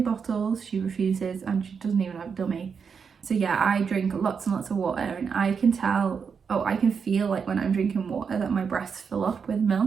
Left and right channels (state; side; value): quieter; left; 6.2 dB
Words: bottles, she refuses, and she doesn't even have a dummy. So yeah, I drink lots and lots of water, and I can feel like when I'm drinking water that my breasts fill up with